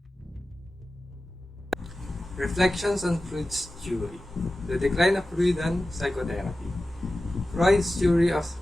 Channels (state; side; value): normal; both; correlation 0.94